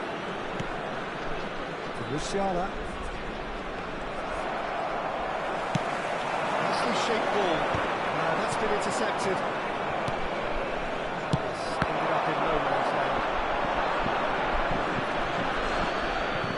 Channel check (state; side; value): identical; both; correlation 1.00